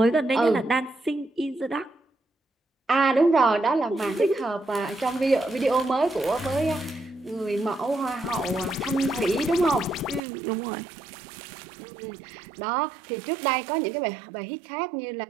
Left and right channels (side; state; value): left; drops out; at 10.2 s